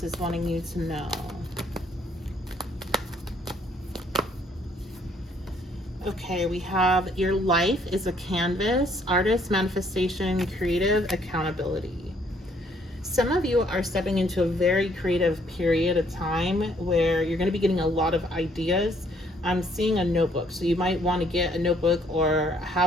is wanting you to know. Okay, we have your life is a canvas, artist, manifestation, creative, accountability. Some of you are stepping into a very creative period of time where you're going to be getting a lot of ideas. I'm seeing a notebook, so you might want to get a notebook or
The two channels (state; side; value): normal; both; correlation 0.65